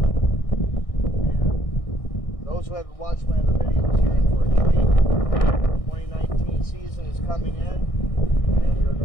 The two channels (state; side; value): late; right; 1.6 ms